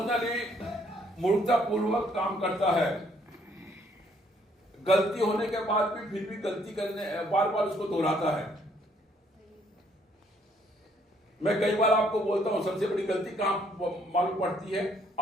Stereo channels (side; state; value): both; normal; correlation 0.66